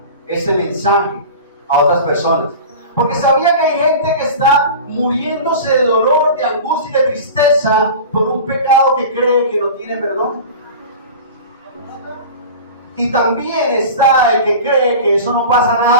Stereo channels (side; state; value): both; inverted; correlation -0.34